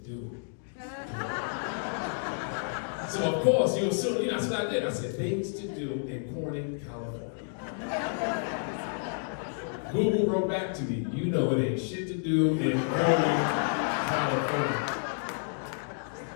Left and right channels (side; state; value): right; silent; digital silence